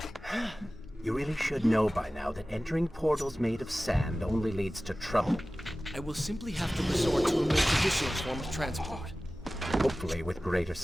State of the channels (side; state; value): both; normal; correlation 0.97